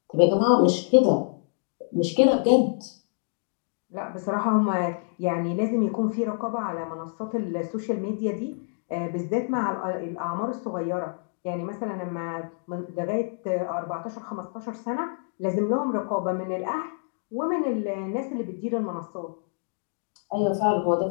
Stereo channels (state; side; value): silent; right; digital silence